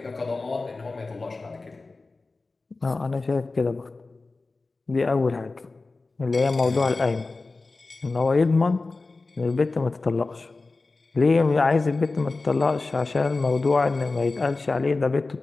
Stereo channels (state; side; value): quieter; right; 3.6 dB